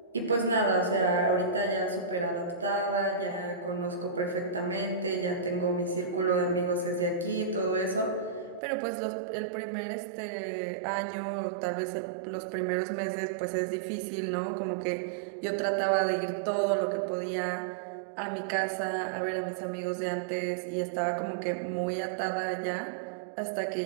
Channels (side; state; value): left; drops out; at 8.6 s